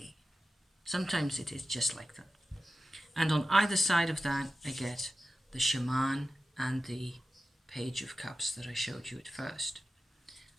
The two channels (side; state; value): both; normal; correlation 0.93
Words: Sometimes it is just like that. And on either side of that, I get the Shaman and the Page of Cups that I showed you at first.